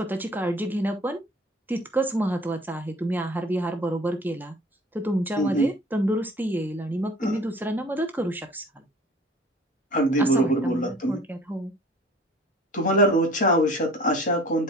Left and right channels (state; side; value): normal; both; correlation 0.48